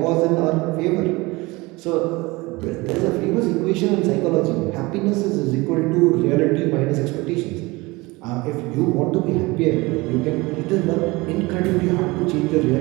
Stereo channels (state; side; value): quieter; left; 23.0 dB